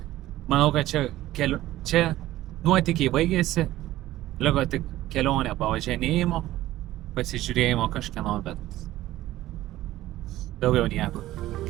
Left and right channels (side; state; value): left; quieter; 15.3 dB